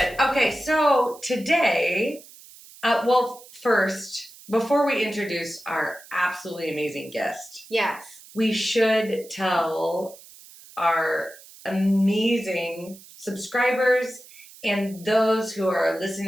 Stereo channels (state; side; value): noise; right; hiss, 21 dB below the sound